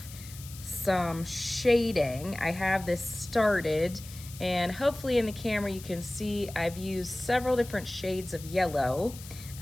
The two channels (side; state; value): left; noise; hiss, 16 dB below the sound